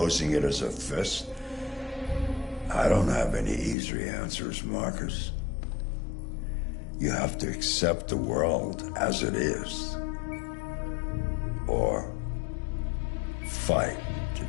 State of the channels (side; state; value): right; drops out; at 3.8 s